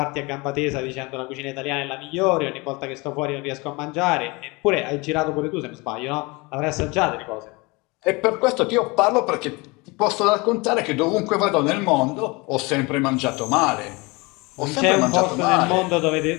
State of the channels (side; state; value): right; quieter; 25.8 dB